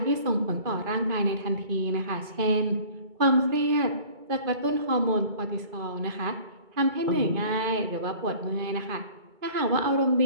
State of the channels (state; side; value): late; left; 2.3 ms